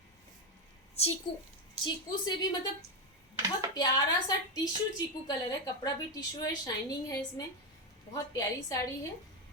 चीकू, चीकू से भी मतलब बहुत प्यारा सा टिश्यू चीकू कलर है, कपड़ा भी टिश्यू है, शाइनिंग है इसमें, बहुत प्यारी साड़ी है।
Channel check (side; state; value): both; normal; correlation 0.09